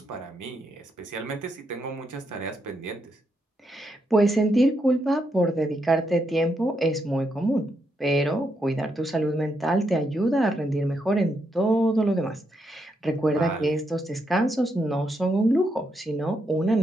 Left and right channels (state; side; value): normal; both; correlation 0.80